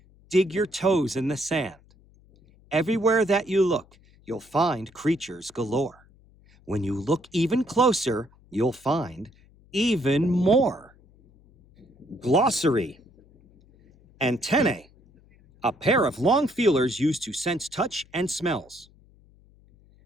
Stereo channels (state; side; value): noise; left; hum, 29 dB below the sound